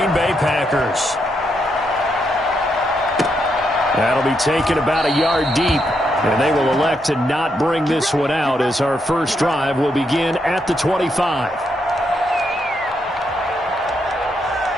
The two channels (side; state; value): both; normal; correlation 0.79